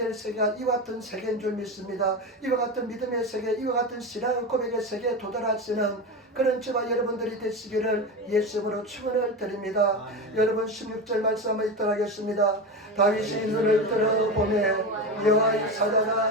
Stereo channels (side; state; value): both; normal; correlation 0.21